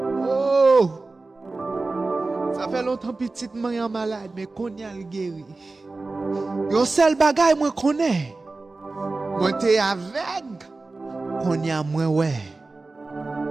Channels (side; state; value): left; quieter; 3.5 dB